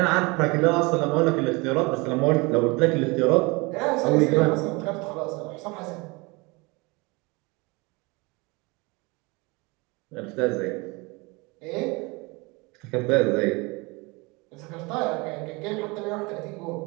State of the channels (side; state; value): left; quieter; 26.3 dB